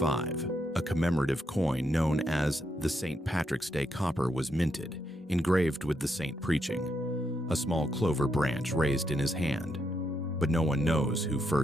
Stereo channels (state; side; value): normal; both; correlation 0.80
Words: a commemorative coin known as the St. Patrick's Day copper was minted, engraved with the saint preaching, a small clover branch raised in his hand. But no one knows who